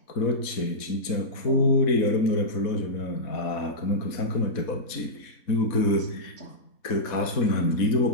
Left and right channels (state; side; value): late; right; 4.1 ms